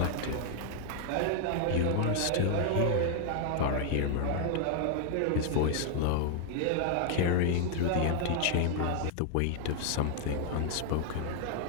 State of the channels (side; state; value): both; different; correlation 0.00